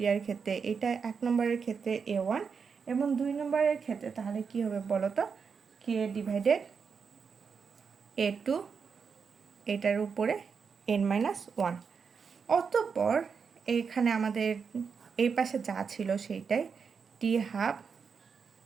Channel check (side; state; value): left; quieter; 5.9 dB